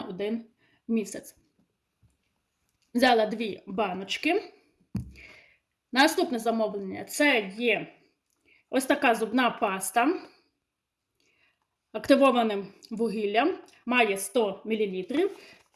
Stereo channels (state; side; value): identical; both; correlation 1.00